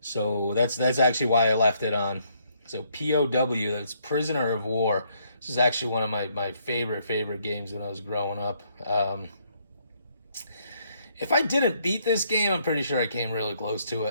So that's actually why I left it on. So POW, that's Prisoner of War. This is actually one of my favorite games when I was growing up. If I didn't beat this game, I'm pretty sure I came really close to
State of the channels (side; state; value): both; inverted; correlation -0.70